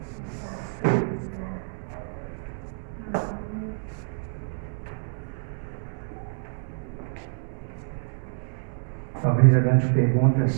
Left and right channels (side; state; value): left; silent; digital silence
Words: Talvez a grande pergunta